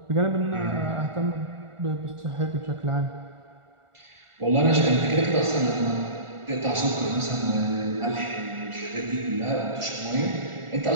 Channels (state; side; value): late; left; 1.4 ms